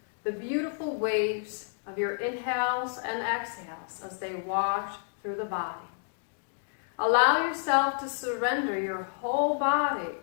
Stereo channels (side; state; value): right; silent; digital silence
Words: the beautiful waves of your inhales and exhales as they wash through the body. Allow yourself to surrender your whole body